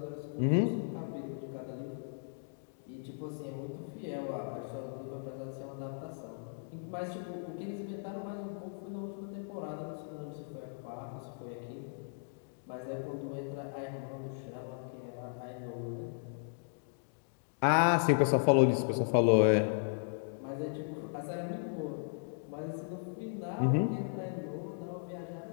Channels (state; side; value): silent; right; digital silence